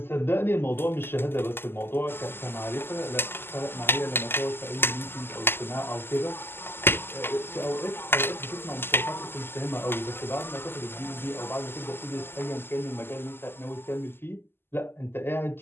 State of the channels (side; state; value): right; late; 0.11 ms